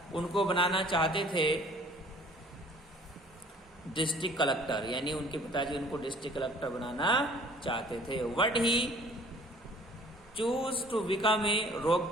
उनको बनाना चाहते थे डिस्ट्रिक्ट कलेक्टर, यानी उनके पिताजी उनको डिस्ट्रिक्ट कलेक्टर बनाना चाहते थे। But he choose to become a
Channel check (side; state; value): both; normal; correlation 0.53